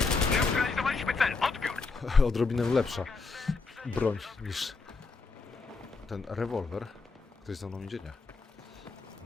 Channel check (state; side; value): quieter; right; 4.2 dB